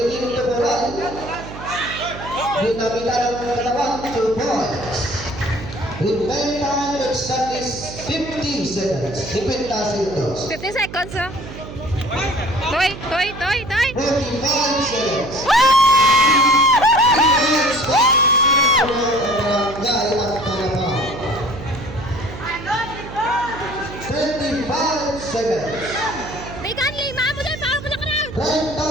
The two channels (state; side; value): noise; right; hum, 12 dB below the sound